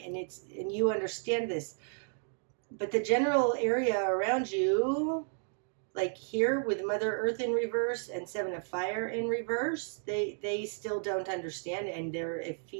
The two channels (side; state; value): left; silent; 56 dB below the other